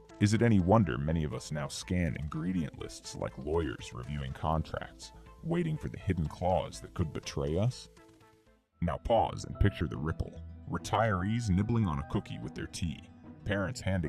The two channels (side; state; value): both; identical; correlation 1.00